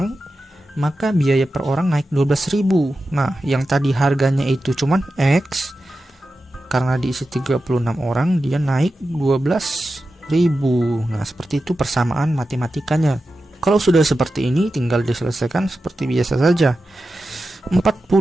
maka biaya per orang naik 12.000. Nah, yang tadi harganya itu cuman X, karena diisi 36 orang dia naik 12.000. Nah, seperti itu persamaan matematikanya. Kalau sudah seperti ini tinggal diselesaikan seperti biasa saja.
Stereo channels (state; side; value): normal; both; correlation 0.92